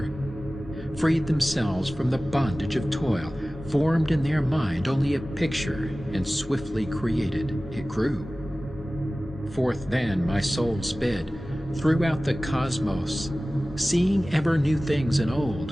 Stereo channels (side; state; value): both; normal; correlation 0.97